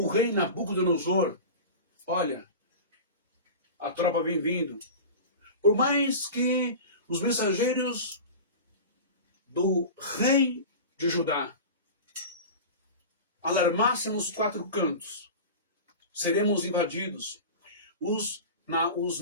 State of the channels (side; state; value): both; inverted; correlation -0.31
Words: rei Nabucodonosor, olha, a tropa vem vindo, por mais que os mensageiros do rei de Judá alarmassem nos quatro cantos, seremos invadidos, os